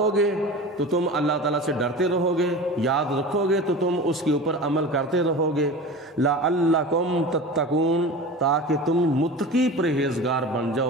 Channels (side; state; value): both; normal; correlation 0.33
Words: گے تو تم اللہ تعالیٰ سے ڈرتے رہو گے، یاد رکھو گے تو تم اس کے اوپر عمل کرتے رہو گے۔ لَعَلَّكُمْ تَتَّقُونَ، تاکہ تم متقی پرہیزگار بن